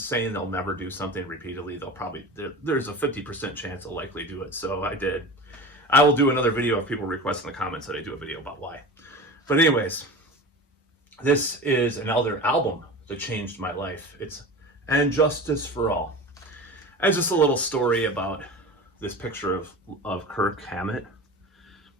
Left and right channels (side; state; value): both; normal; correlation 0.32